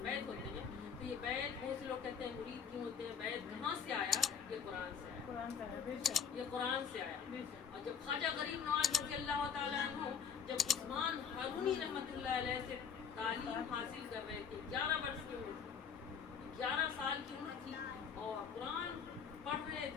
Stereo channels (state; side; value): quieter; right; 6.9 dB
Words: بیعت ہوتے ہیں، تو یہ بیعت بہت سے لوگ کہتے ہیں مرید کیوں ہوتے ہیں، بیعت کہاں سے آیا؟ یہ قرآن سے آیا، یہ قرآن سے آیا۔ اور جب خواجہ غریب نواز رضی اللہ تعالیٰ عنہ جب عثمان ہارونی رحمۃ اللہ علیہ سے تعلیم حاصل کر رہے تھے، 11 برس کی عمر تھی، 11 سال کی عمر تھی، اور قرآن پڑھ رہے